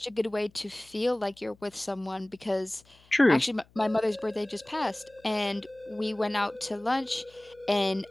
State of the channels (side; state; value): left; noise; hum, 29 dB below the sound